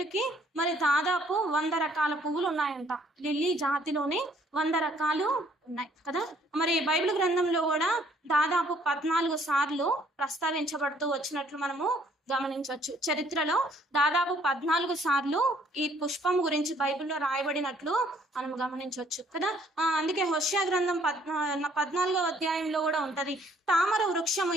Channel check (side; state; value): both; normal; correlation 0.63